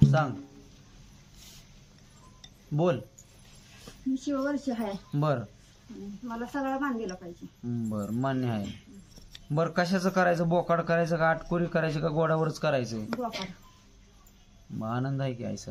सांग बोल. मी शिववर्ष आहे. बर मला सगळा मान दिला पाहिजे. बर मान्य आहे. बर कशाचं करायचं, बोकाड करायचं का आटकोरी करायची का गोडावरच करायचं. बोकाड. मग आनंद आहे की आई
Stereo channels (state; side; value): identical; both; correlation 1.00